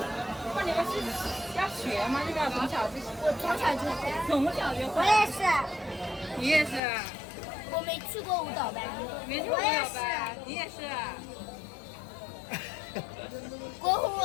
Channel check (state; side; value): drops out; right; at 6.8 s